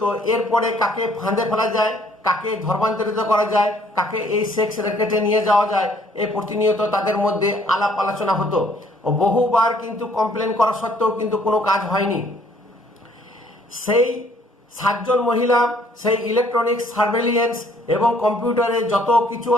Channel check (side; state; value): both; normal; correlation 0.62